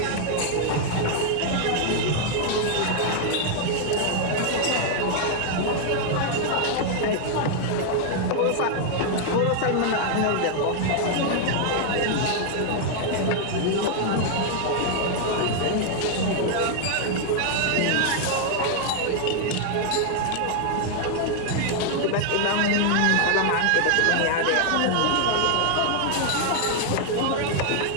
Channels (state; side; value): different; both; correlation 0.00